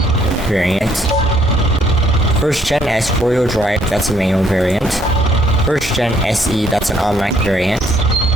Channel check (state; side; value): normal; both; correlation 0.66